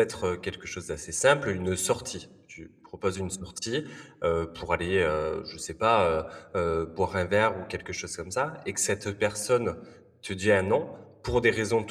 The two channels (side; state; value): both; identical; correlation 1.00